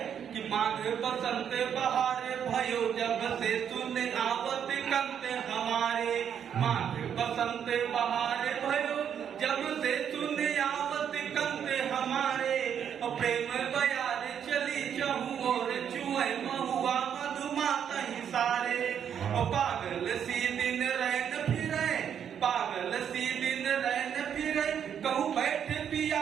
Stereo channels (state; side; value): quieter; left; 8.5 dB